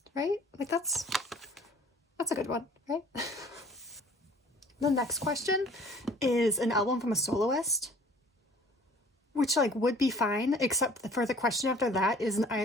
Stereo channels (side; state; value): both; normal; correlation 0.51